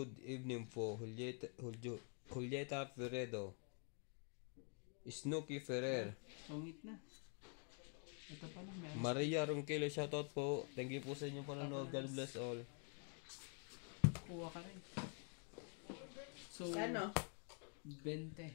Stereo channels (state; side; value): quieter; right; 38.3 dB